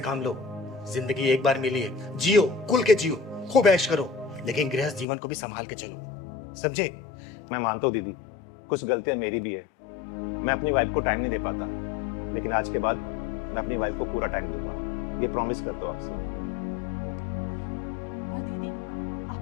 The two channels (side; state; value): right; drops out; at 5.1 s